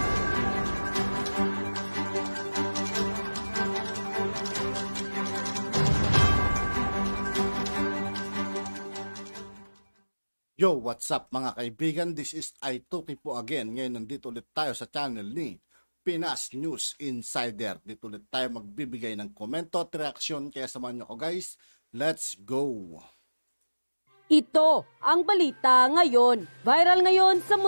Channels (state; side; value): inverted; both; correlation -1.00